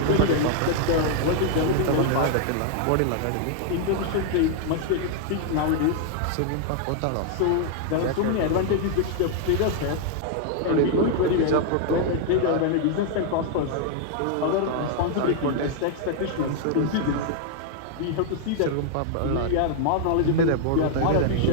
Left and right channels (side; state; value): both; different; correlation 0.00